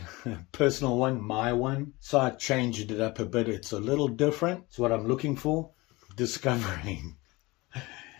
a personal one, my one. So I changed it up a bit. It's a little different. It's what I'm looking for. Discovering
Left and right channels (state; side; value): quieter; right; 22.4 dB